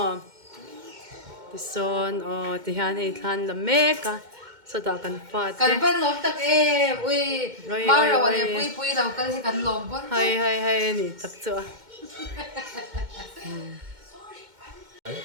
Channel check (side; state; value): left; late; 2.1 ms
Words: tison ti han ei than la me ka so ta kan fa te kan ban lom tak e ui maro ane pui lau kal hi kan lom pon hai ni tak cho